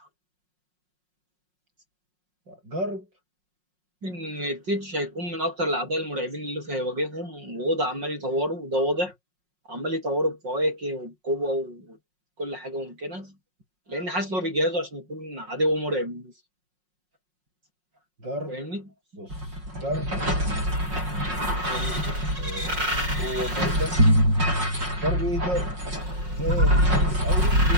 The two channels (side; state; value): left; late; 5.5 ms